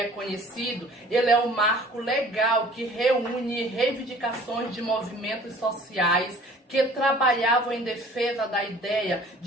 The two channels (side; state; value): both; normal; correlation 0.50